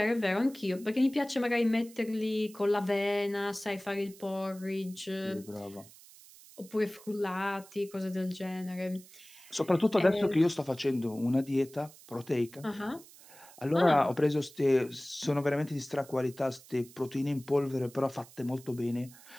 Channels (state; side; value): noise; right; hiss, 21 dB below the sound